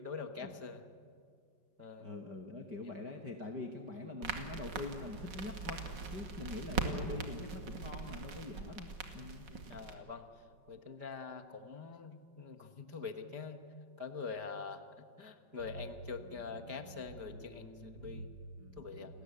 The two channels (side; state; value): left; late; 5.5 ms